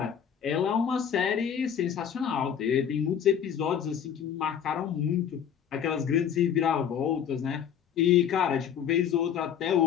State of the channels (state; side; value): quieter; right; 8.6 dB